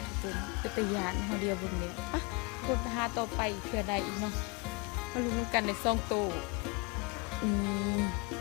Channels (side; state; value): right; quieter; 29.1 dB